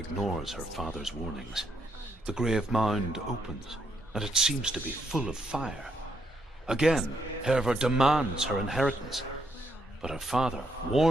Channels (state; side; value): normal; both; correlation 0.76